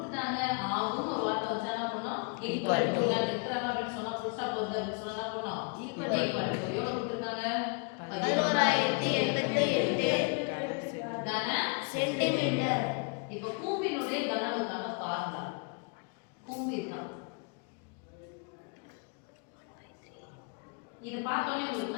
ஆகும் ஒரு வார்த்தை வச்சா என்ன பண்ணோம்? ஈக்குவல் டு நான் எடுக்கறாங்க அப்படி சொன்னா புதுசா போறது அப்படி சொன்னா என்ன பண்ணோம்? ஈக்குவல் டு எவ்வளவு கொடுத்திருக்காங்க? 11,088 கன சென்டிமீட்டர். இப்போ கூம்பினுடைய கன அளவுக்கான ஃபார்முலா கூம்பு தான். இது பார்த்தோன்னே உங்களுக்கு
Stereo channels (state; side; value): quieter; right; 35.7 dB